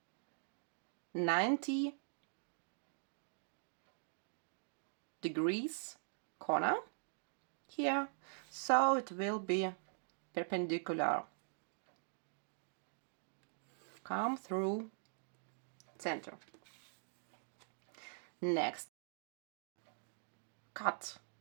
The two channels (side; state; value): left; silent; digital silence